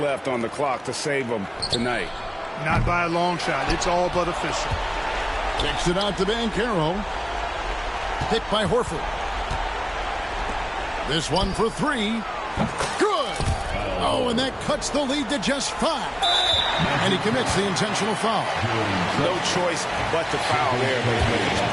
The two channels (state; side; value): identical; both; correlation 1.00